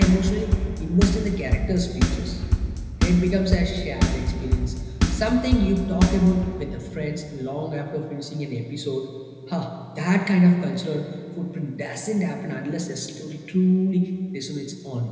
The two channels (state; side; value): identical; both; correlation 1.00